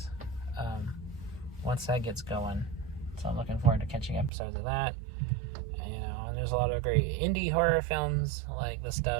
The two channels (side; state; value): left; drops out; at 4.3 s